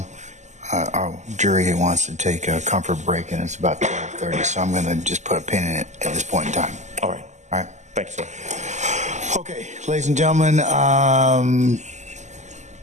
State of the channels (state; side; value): late; left; 0.34 ms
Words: Our jury wants to take a comfort break, and it's about 12:30, so I'm going to just put a pin in it at this point in time. All right. All right? Thank you, sir. Okay, ladies and gentlemen,